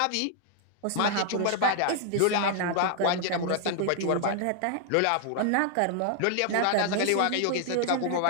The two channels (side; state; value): both; different; correlation 0.00